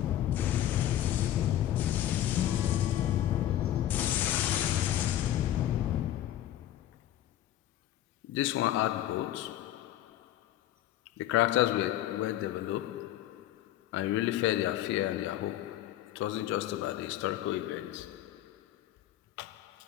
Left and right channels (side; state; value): right; quieter; 12.6 dB